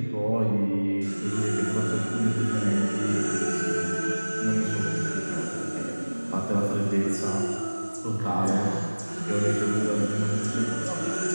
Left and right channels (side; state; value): both; inverted; correlation -1.00